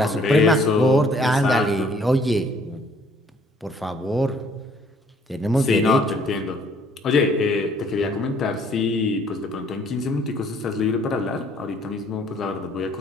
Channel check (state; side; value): normal; both; correlation 0.61